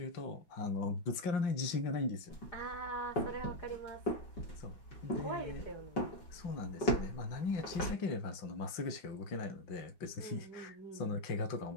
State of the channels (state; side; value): late; right; 5.6 ms